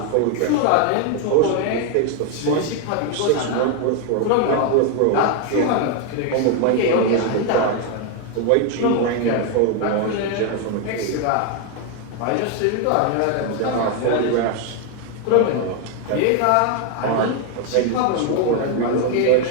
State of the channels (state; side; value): different; both; correlation 0.01